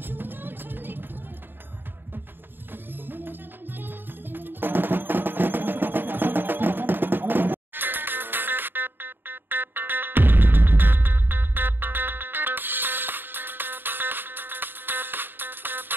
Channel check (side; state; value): left; late; 0.096 ms